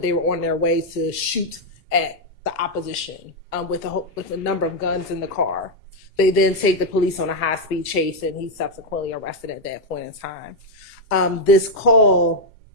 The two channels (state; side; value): normal; both; correlation 0.01